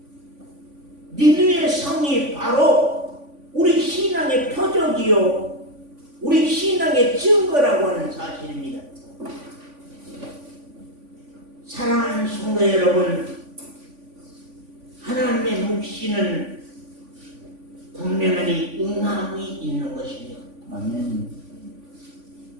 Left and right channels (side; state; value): left; late; 3.5 ms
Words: 니느웨 성이 바로 우리 신앙의 표적이요, 우리 신앙의 증거라고 하는 사실입니다. 사랑하는 성도 여러분, 하나님의 묵시는 분명히 응함이 있는 것입니다. 아멘.